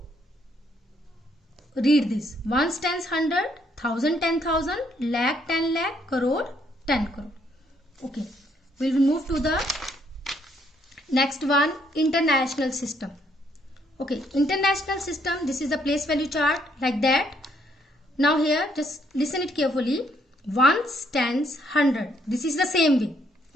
read this: ones, tens, 100, thousand, 10,000, lakh, 10 lakh, crore, 10 crore. Okay, we will move to the next one, international system. Okay, international system. This is the place value chart like that. Now here, just listen it carefully. Ones, tens, 100. This is the same way.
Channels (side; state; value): both; normal; correlation 0.70